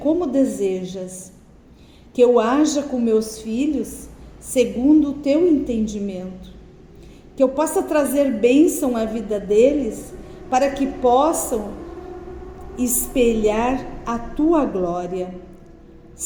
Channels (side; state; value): both; identical; correlation 1.00